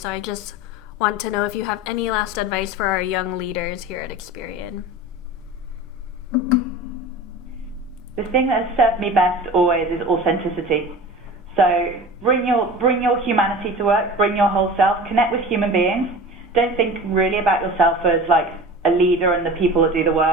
I just want to know if you have any last advice for our young leaders here at Experian. the thing that has served me best always is authenticity. So bring your humanity to work, bring your whole self, connect with human beings. Don't think really about yourself as like a leader and the people that do the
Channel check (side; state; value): both; normal; correlation 0.36